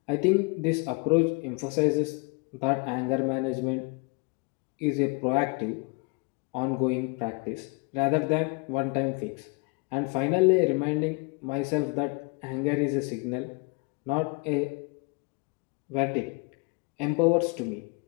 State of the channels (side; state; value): right; quieter; 32.3 dB